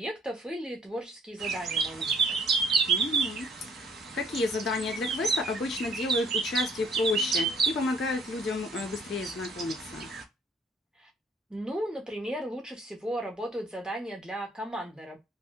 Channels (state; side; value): normal; both; correlation 0.60